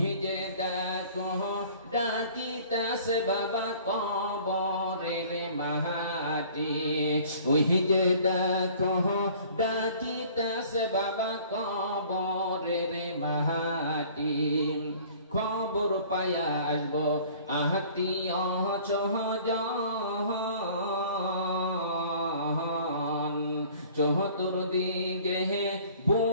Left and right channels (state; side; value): inverted; both; correlation -0.51